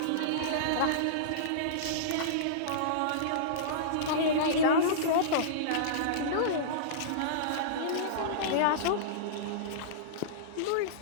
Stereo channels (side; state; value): both; different; correlation -0.04